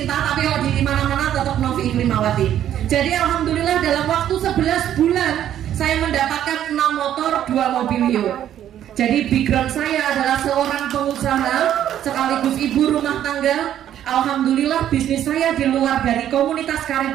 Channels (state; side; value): quieter; left; 11.0 dB